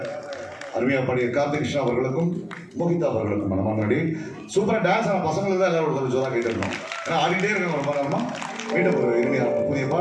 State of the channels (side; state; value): both; identical; correlation 1.00